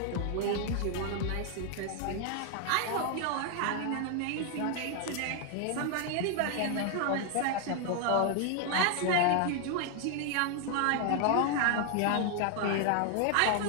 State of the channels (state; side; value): different; both; correlation 0.00